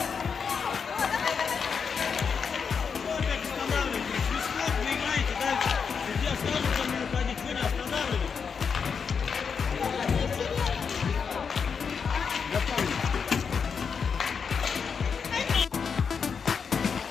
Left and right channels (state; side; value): quieter; right; 6.1 dB